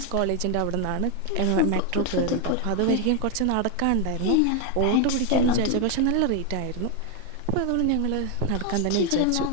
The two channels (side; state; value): both; different; correlation 0.01